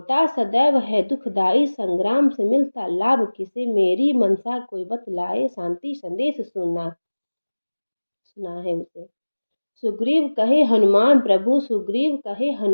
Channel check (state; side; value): inverted; both; correlation -1.00